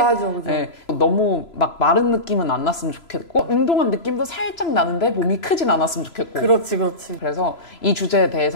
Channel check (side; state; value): right; late; 3.0 ms